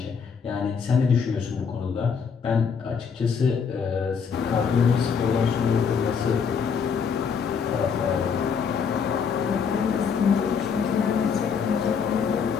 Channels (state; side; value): quieter; right; 6.3 dB